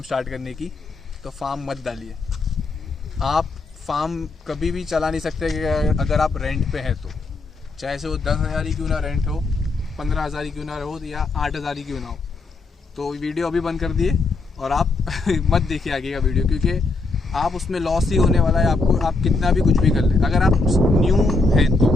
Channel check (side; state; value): right; quieter; 3.6 dB